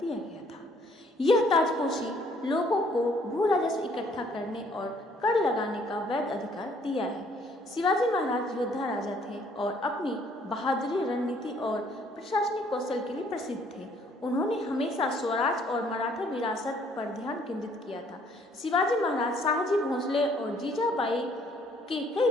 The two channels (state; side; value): normal; both; correlation 0.63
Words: गया था। यह ताजपोशी लोगों को भू राजस्व इकट्ठा करने और कर लगाने का वैध अधिकार दिया है। शिवाजी महाराज योद्धा राजा थे और अपनी बहादुरी, रणनीति और प्रशासनिक कौशल के लिए प्रसिद्ध थे। उन्होंने हमेशा स्वराज और मराठा विरासत पर ध्यान केंद्रित किया था। शिवाजी महाराज शाहजी भोसले और जीजाबाई के कई